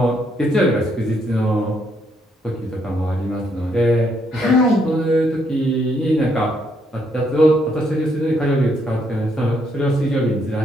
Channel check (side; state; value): both; normal; correlation 0.73